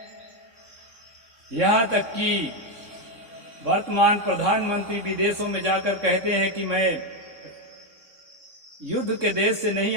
यहाँ तक कि वर्तमान प्रधानमंत्री विदेशों में जाकर कहते हैं कि मैं युद्ध के देश से नहीं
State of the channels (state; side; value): late; left; 3.6 ms